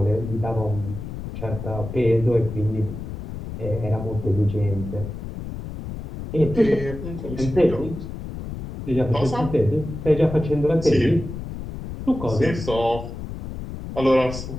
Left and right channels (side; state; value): left; noise; rumble, 8 dB below the sound